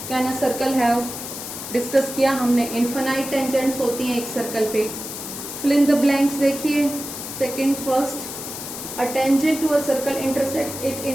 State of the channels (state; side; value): noise; left; hiss, 8 dB below the sound